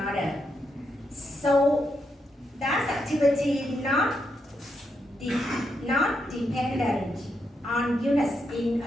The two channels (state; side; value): normal; both; correlation 0.82